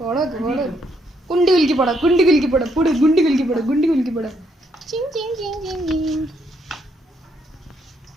കുണ്ടി കുലുക്കി പോടാ, കുണ്ടി കുലുക്കി പോടാ, പൊട് ഗുണ്ടി കുലുക്കി പോടാ, ഗുണ്ടി കുലുക്കി പോടാ.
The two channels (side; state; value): both; normal; correlation 0.74